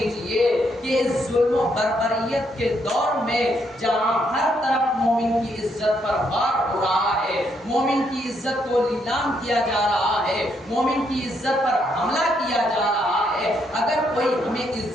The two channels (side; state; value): both; normal; correlation 0.75